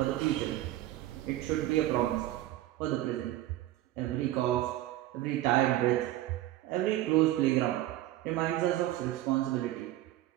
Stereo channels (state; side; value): quieter; left; 14.9 dB